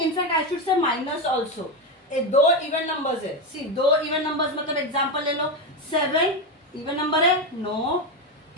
I should say minus also. 2 even numbers है. सी 2 इवन नंबर्स मतलब एग्जांपल ले लो. 7 इवन नंबर है? No.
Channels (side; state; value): both; normal; correlation 0.12